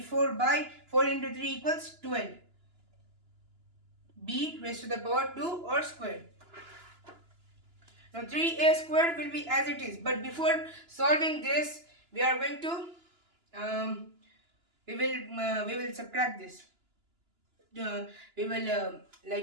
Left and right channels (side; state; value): left; late; 2.9 ms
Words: by 4 into 3 equals 12. B raised to the power 2 or square. Now 3a square will be as it is. But before solving this, we are going to we will subtract this. We will